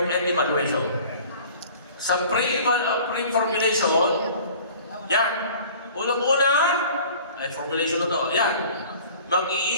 and evaluation. Sa pre-formulation, yan. Unang-una, ay formulation na to, yan.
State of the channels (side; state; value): both; inverted; correlation -0.46